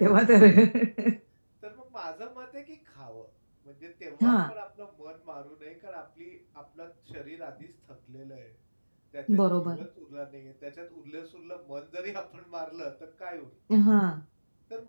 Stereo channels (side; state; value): both; inverted; correlation -1.00